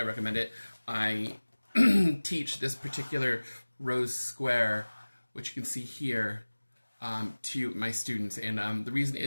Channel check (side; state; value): both; inverted; correlation -1.00